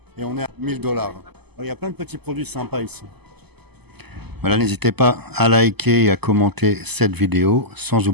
et on est à $1000. Il y a plein de petits produits sympas ici. Voilà, n'hésitez pas à liker et à commenter cette vidéo, sans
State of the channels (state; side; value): late; left; 0.98 ms